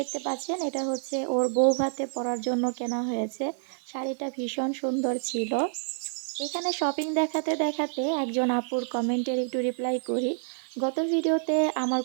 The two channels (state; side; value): silent; left; 58 dB below the other